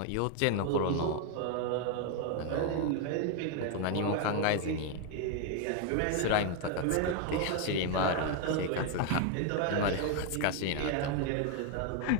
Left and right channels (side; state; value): both; different; correlation 0.00